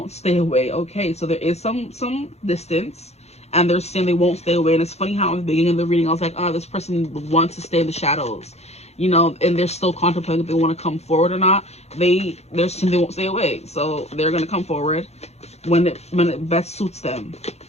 stay away. Okay, so there is some distance, and they're saying they won't stay away. And it's funny how in the beginning of the reading I was like, oh, this person wants to stay in the shadows, you know, and they're still contemplating if they want to come forward or not. They're saying they won't stay away, so they're gonna come forward when it best suits them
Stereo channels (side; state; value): right; late; 0.31 ms